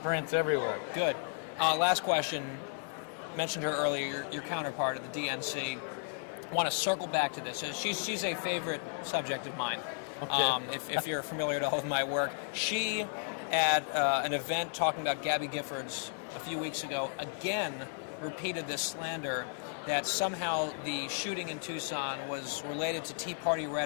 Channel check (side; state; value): right; silent; 55 dB below the other